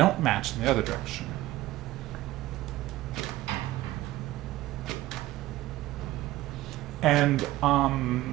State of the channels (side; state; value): left; quieter; 16.6 dB